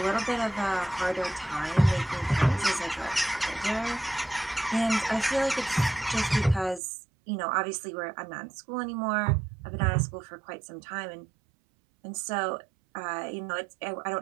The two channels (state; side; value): drops out; left; at 6.8 s